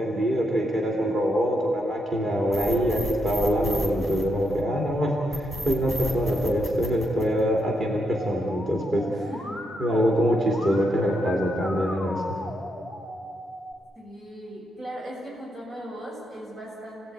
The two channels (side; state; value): both; normal; correlation 0.80